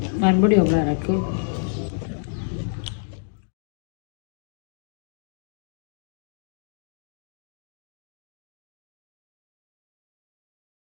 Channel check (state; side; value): silent; right; digital silence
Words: मैं बढ़िया बना रखो।